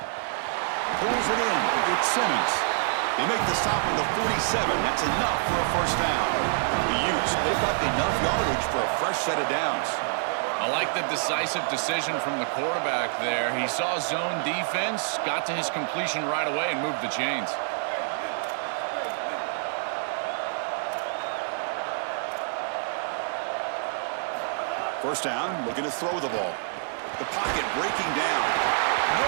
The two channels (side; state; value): left; silent; digital silence